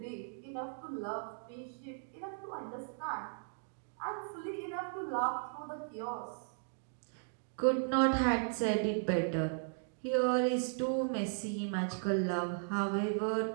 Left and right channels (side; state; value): left; silent; digital silence